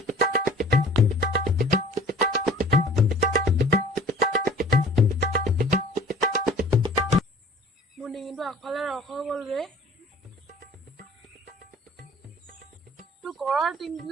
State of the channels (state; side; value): normal; both; correlation 0.48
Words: মোৰ ডিঙিটো আগফালে ৰস হৈ গ'ল ৰে। তোৰ ঘৰৰ